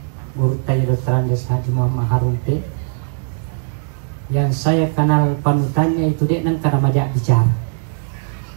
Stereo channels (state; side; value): silent; left; digital silence